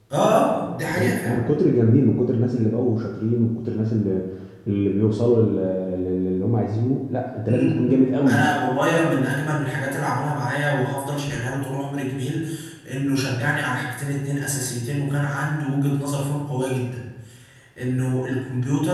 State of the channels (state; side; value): identical; both; correlation 1.00